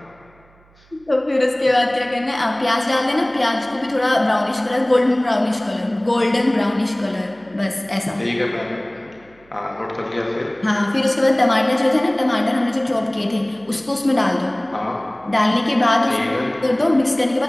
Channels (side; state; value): right; noise; hum, 30 dB below the sound